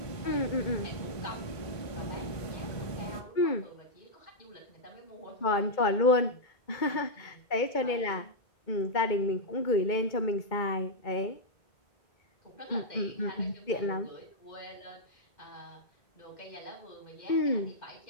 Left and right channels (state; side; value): late; right; 2.2 ms